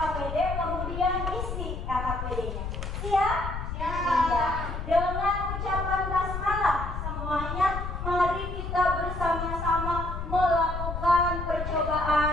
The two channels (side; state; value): left; noise; rumble, 5 dB below the sound